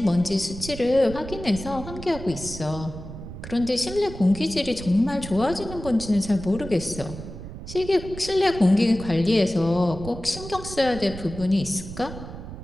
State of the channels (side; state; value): right; noise; rumble, 11 dB below the sound